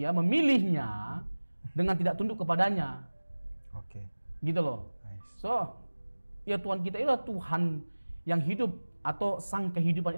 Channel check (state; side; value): inverted; both; correlation -1.00